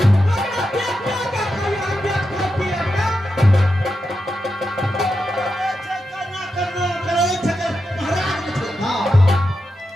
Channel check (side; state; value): both; normal; correlation 0.88